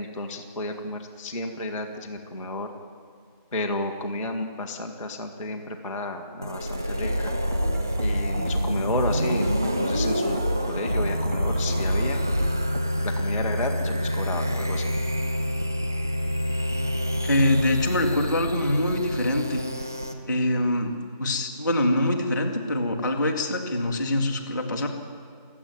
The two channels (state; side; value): inverted; both; correlation -0.77